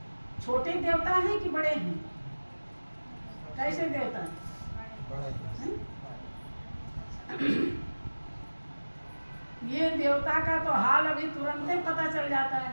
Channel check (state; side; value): inverted; both; correlation -1.00